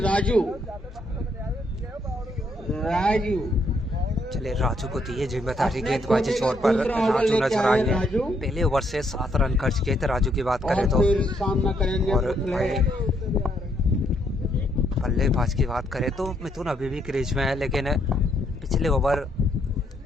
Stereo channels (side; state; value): both; normal; correlation 0.73